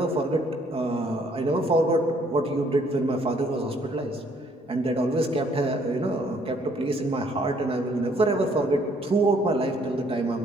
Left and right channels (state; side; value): normal; both; correlation 0.65